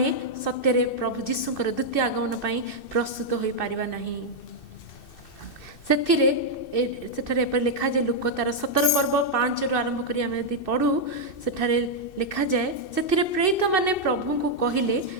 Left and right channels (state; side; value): late; right; 2.6 ms